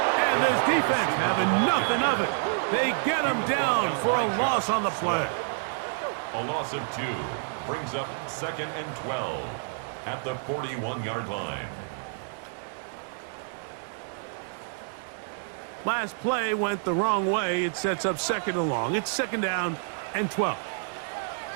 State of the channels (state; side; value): silent; left; digital silence